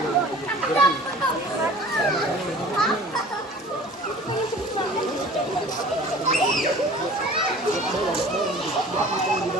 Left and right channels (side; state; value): both; normal; correlation 0.45